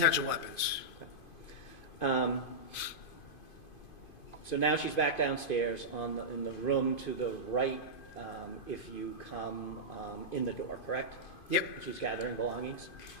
weapons. Okay. So now she's back downstairs in the room to the right if you come in the door, correct? Yep. And she's gathering belongings.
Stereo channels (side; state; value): right; late; 2.5 ms